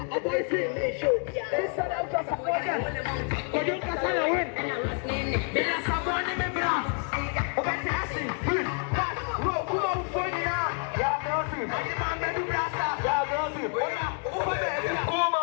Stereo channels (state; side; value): quieter; right; 38.7 dB